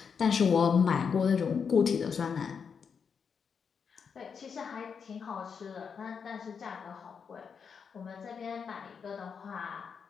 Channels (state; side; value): quieter; right; 6.3 dB